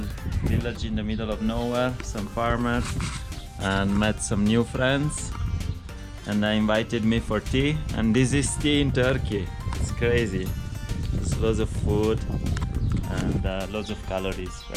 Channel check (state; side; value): identical; both; correlation 1.00